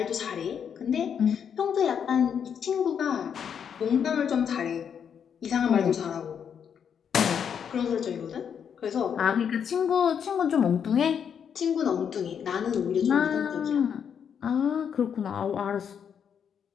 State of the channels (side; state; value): right; quieter; 7.7 dB